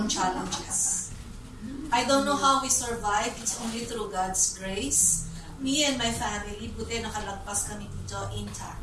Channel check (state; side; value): identical; both; correlation 1.00